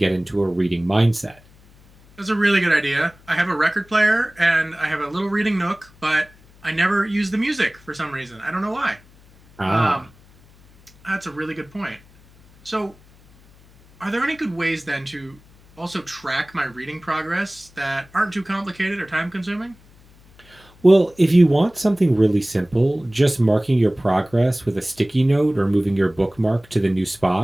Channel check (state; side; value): noise; left; hum, 27 dB below the sound